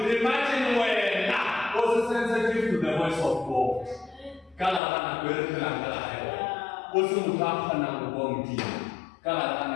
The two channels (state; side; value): drops out; right; at 4.8 s